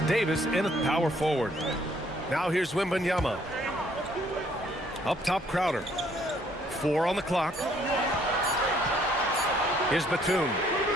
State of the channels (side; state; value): both; normal; correlation 0.64